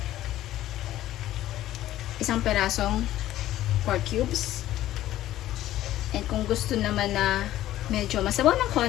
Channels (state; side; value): quieter; right; 13.9 dB